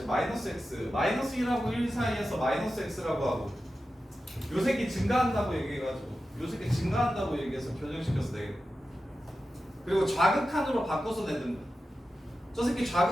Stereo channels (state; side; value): normal; both; correlation 0.92